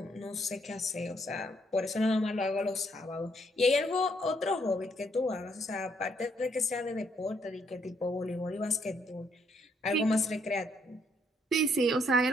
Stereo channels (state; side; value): normal; both; correlation 0.71